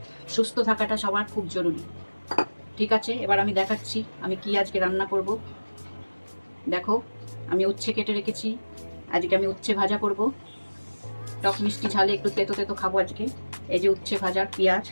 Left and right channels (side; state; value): both; inverted; correlation -1.00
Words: সুস্থ থাকাটা সবার খুব জরুরি। ঠিক আছে, এবার আমি দেখাচ্ছি আমি কি আজকে রান্না করব। দেখো, আমি উচ্ছে কেটে রেখেছি। আজকে আমি উচ্ছে ভাজা করব। টক মিষ্টি ঝালে একটু তেতো তেতো খাবো আজকে। এই যে উচ্ছে ভাজার পেঁয়াজ,